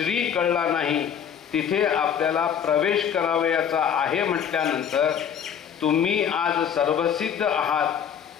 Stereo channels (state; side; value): quieter; right; 8.2 dB